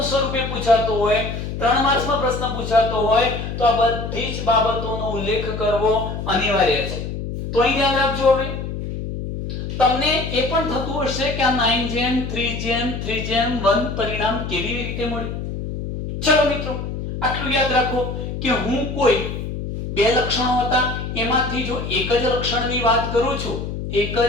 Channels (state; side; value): noise; left; hum, 6 dB below the sound